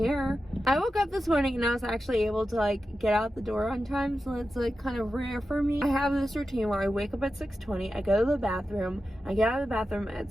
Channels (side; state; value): both; normal; correlation 0.91